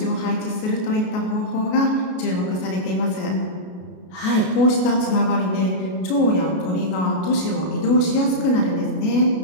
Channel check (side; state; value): right; late; 33 ms